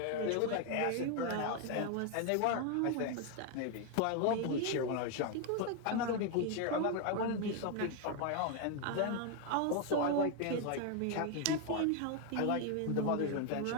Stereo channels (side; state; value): both; different; correlation 0.01